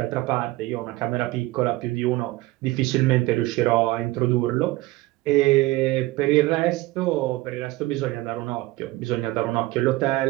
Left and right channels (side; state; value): left; quieter; 18.9 dB